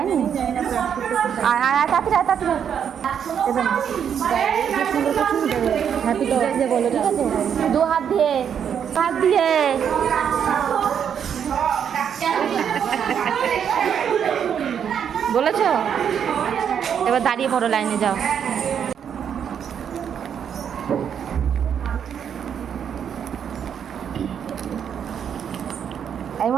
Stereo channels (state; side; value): quieter; left; 8.1 dB